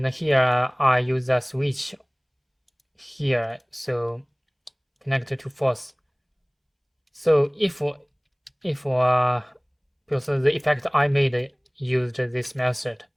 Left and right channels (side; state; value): both; identical; correlation 1.00